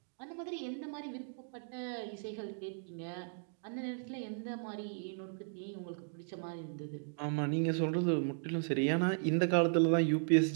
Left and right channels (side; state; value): left; silent; digital silence